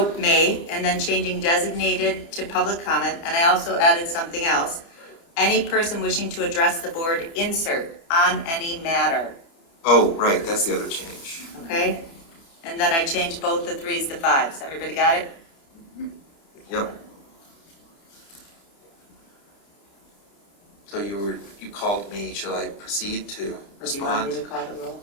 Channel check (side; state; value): right; late; 30 ms